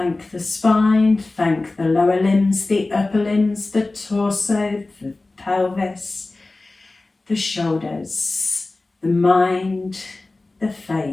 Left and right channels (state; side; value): quieter; right; 3.2 dB